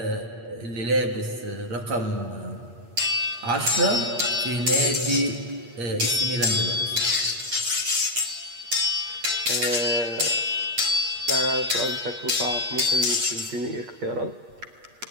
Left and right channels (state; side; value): late; left; 8.5 ms